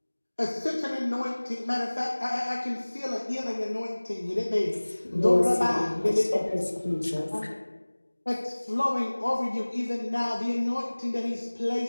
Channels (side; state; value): both; inverted; correlation -1.00